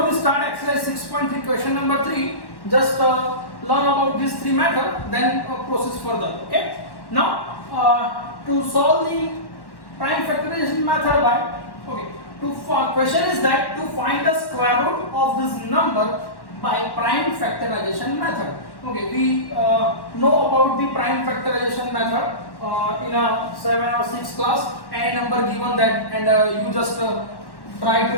we start exercise 6.3 question number 3, just learn about these three methods, then proceed further. Okay, now to solve the prime factorization method by question is that to find the square root of this number by prime factorization method. Okay, we know about the prime factorization method in a 7 or 6 class. Any number given that, and you just try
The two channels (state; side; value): late; right; 1.1 ms